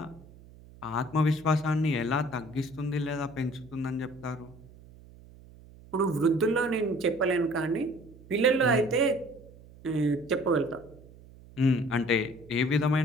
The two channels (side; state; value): right; noise; hum, 22 dB below the sound